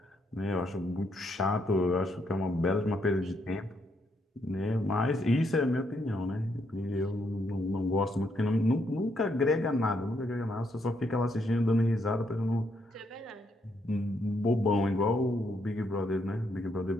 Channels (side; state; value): both; normal; correlation 0.75